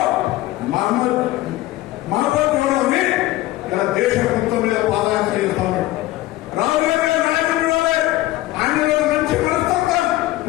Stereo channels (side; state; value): right; quieter; 16.7 dB